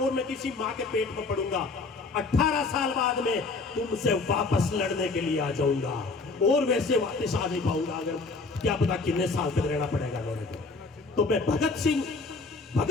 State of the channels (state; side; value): quieter; right; 3.8 dB